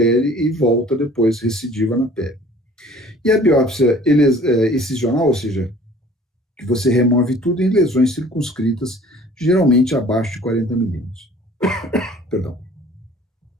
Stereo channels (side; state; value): both; normal; correlation 0.50